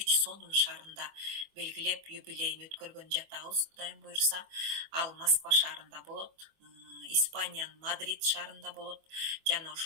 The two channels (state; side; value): late; left; 25 ms